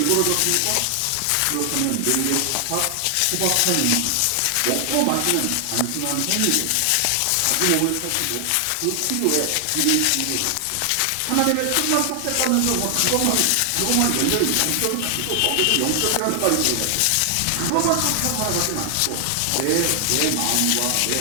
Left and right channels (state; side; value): different; both; correlation 0.00